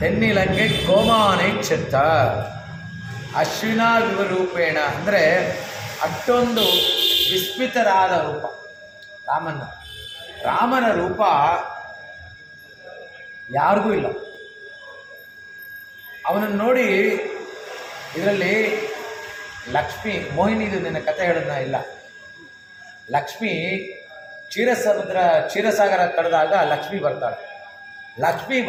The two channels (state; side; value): identical; both; correlation 1.00